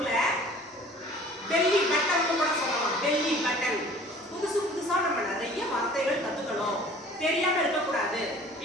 பெல்லி பட்டன் கூட சொல்லலாம், பெல்லி பட்டன். புதுசு புதுசா நம்ம நிறைய வார்த்தைகள் கத்துக்கணும், தெரியாம இருக்கக்கூடாது.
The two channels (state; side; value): normal; both; correlation 0.49